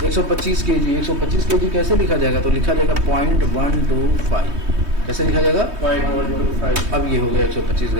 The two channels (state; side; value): late; left; 3.2 ms